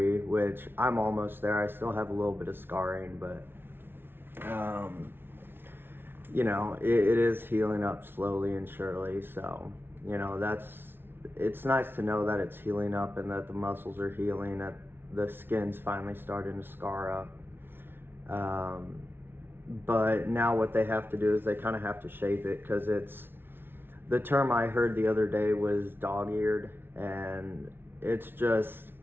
which I'm almost there. I still have a little bit of scarring, but, it is healing up slowly and surely. So, it's nice to know that it's healing up and that the muscles are healing, that the skin's finally starting to scar up. But now what they have to do is they kind of have to shape it, because the term I heard the other day was dog-eared, and it's just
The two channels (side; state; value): left; late; 0.11 ms